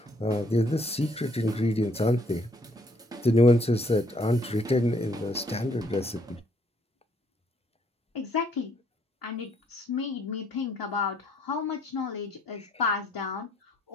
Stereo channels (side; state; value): both; normal; correlation 0.67